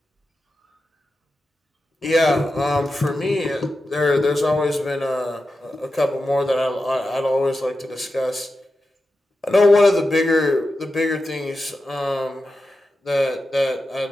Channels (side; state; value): both; normal; correlation 0.91